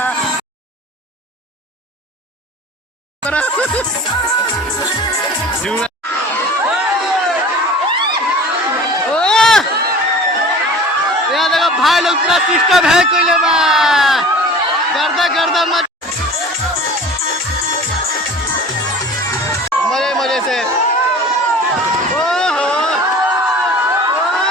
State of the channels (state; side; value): normal; both; correlation 0.41